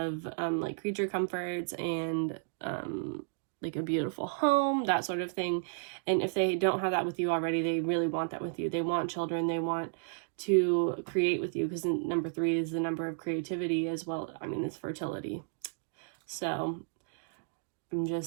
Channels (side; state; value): left; silent; digital silence